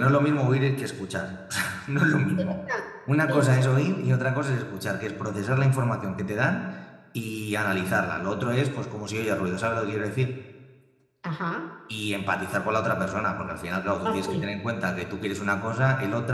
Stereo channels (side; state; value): both; identical; correlation 1.00